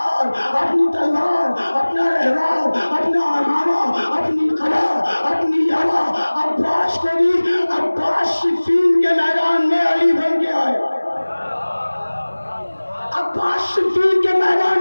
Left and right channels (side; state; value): both; inverted; correlation -1.00